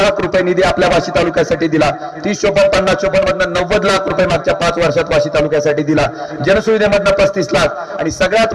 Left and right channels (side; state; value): both; identical; correlation 1.00